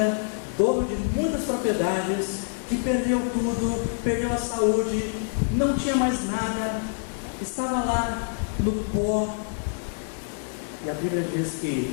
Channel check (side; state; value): right; silent; 58 dB below the other